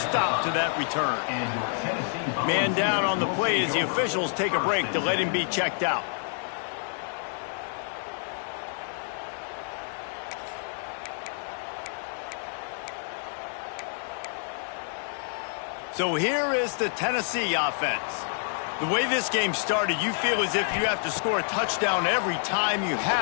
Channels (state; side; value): silent; right; 59 dB below the other